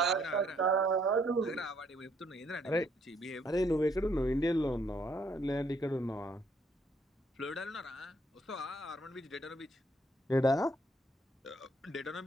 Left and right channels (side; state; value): both; normal; correlation 0.69